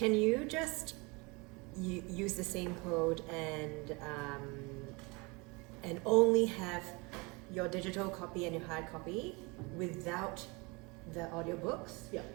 you just use the same code and only have your digital copy and your hard copy without the audiobooks? Yeah.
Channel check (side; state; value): left; quieter; 27.4 dB